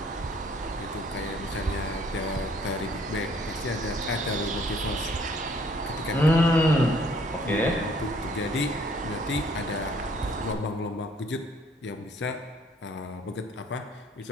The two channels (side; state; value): both; normal; correlation 0.61